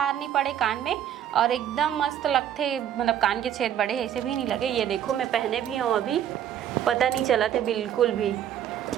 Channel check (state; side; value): quieter; left; 10.3 dB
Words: नहीं पड़े कान में और एकदम मस्त लगते। मतलब कान के छेद बड़े ऐसे भी नहीं लगे। ये देखो मैं पहने भी हूँ, अभी पता नहीं चला थे बिल्कुल भी।